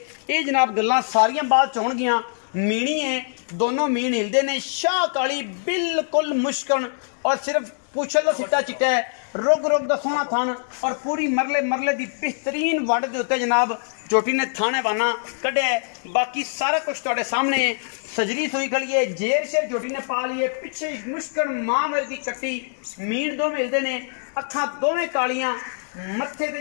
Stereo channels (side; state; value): right; silent; digital silence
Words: ये जनाब गल्लां सारियां बात च होणगियां। मीणी है, दोनों मीन हिलदे ने, शाह काली बिल्कुल मुश्कन और सिर्फ पुछल का सिट्टा चिट्टा है, रुग रुग का सोहना थान और पूरी मरले मरले की बेहतरीन वंड के उत्ते जनाब झोटी ने थाने वाना कढ़िया है। बाकी सारा कुछ तुहाडे सामने सजरी सुई खड़ी है, जेर शेर झोटी ने पा ली है, पिछे मुश्कन मां मेरे की कट्टी, मीन दो मिलते ने, अखां दोवें कालियां, मत्थे ते